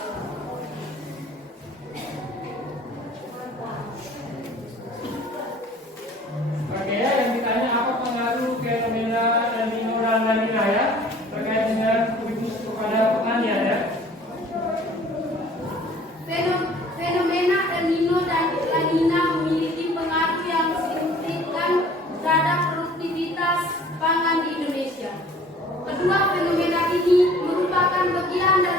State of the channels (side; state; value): both; normal; correlation 0.51